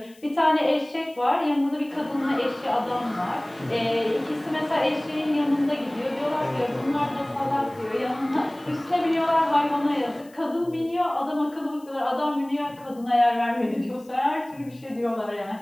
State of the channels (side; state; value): left; noise; hiss, 28 dB below the sound